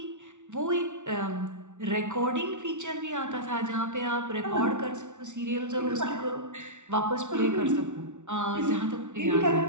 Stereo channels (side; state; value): left; late; 0.85 ms